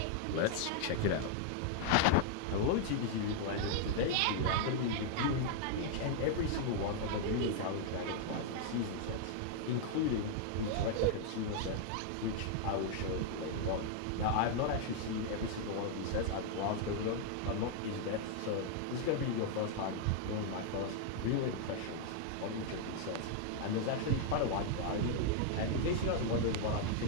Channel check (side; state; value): both; different; correlation 0.00